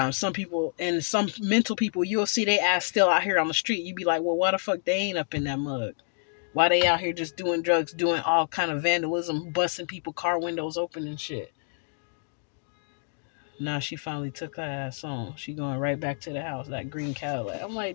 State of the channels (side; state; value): right; silent; digital silence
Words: some people and some mental people you'll see they ass still out here on the street. You be like, well, why the fuck they ain't up in that mug? Why they out here just doing drugs, doing all kind of vandalism, busting people car windows open and shit? Now she finally took her ass on. She going right back to the house, that green Cadillac. I'm